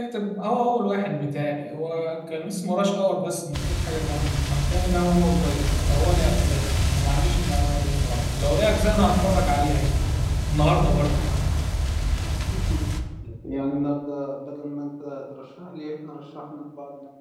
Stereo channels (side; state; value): both; identical; correlation 1.00